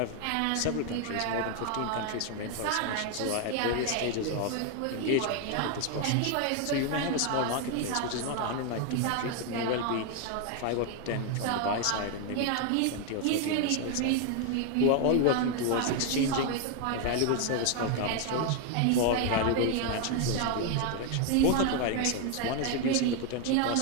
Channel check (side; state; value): both; different; correlation 0.01